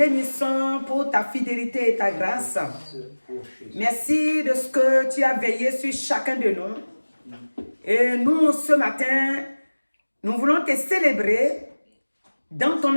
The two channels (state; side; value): inverted; both; correlation -1.00